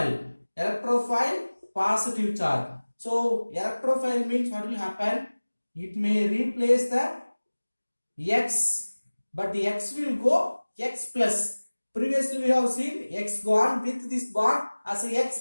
Electrophile positive charge. So electrophile means what will happen? It may replace the X, but the X will go X plus. Previously we have seen X gone with this bond as a X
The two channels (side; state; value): both; inverted; correlation -1.00